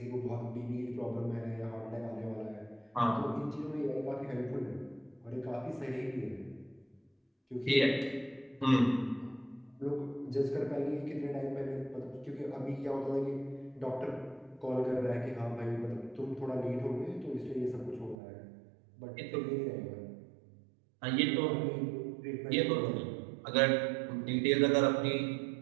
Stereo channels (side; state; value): left; drops out; at 18.2 s